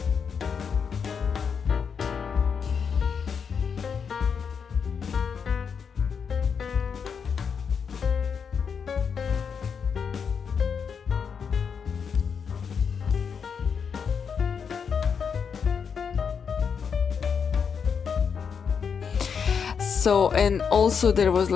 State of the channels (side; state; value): right; quieter; 6.5 dB